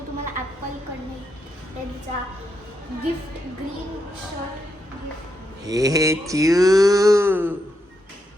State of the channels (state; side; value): normal; both; correlation 0.82